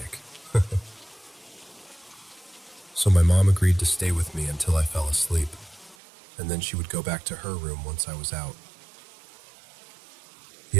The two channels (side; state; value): left; drops out; at 6.0 s